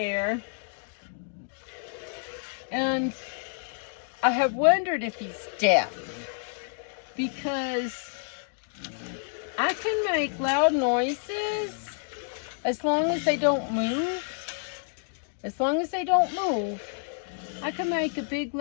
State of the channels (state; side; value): silent; right; 59 dB below the other